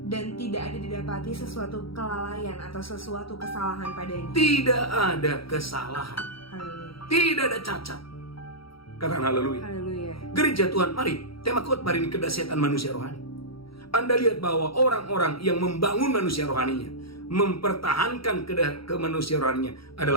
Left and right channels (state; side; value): late; right; 0.75 ms